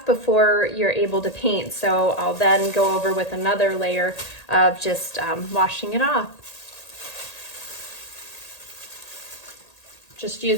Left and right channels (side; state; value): right; late; 1.8 ms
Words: before you're able to paint. So I'll then go over with another layer of just washing it off. Just